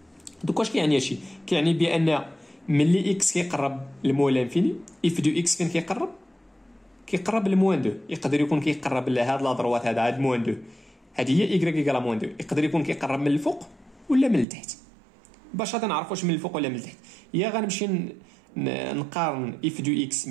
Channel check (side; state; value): left; drops out; at 14.5 s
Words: دوك واش كيعني هادشي؟ كيعني بان ملي اكس كيقرب لموان لانفيني اف دو اكس فين كيقرب؟ كيقرب لموان 2. يقدر يكون كيقرب لهاد لا دروات هاد موان 2 هذه هي y ايكال موان 2. يقدر يكون كيقرب من الفوق ولا من التحت. باش غادي نعرف واش من الفوق ولا من التحت يا غنمشي نقارن اف دو اكس